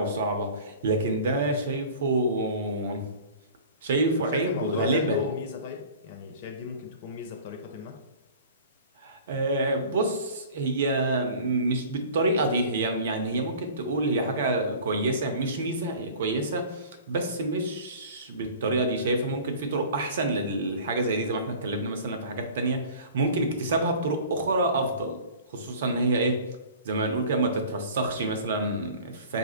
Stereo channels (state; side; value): inverted; both; correlation -0.43